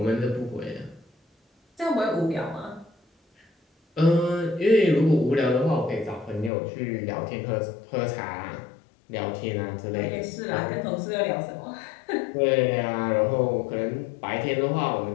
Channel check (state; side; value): drops out; right; at 6.5 s